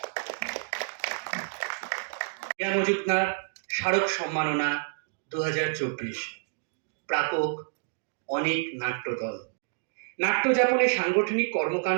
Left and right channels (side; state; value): left; silent; digital silence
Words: কেয়া মজুমদার স্মারক সম্মাননা 2024, প্রাপক অনেক নাট্যদল। নাট্যযাপনে সাংগঠনিক